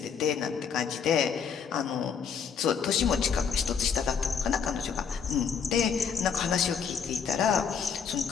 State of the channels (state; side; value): quieter; right; 6.8 dB